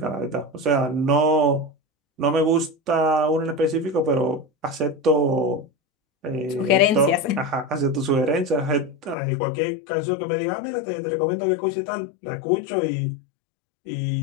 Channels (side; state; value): right; drops out; at 9.2 s